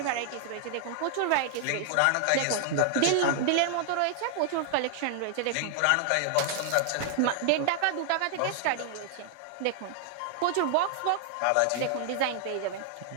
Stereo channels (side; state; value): both; different; correlation -0.01